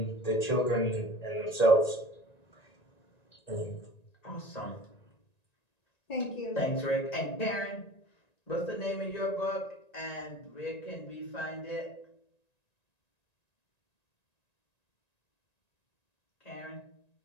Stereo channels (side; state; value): right; late; 1.9 ms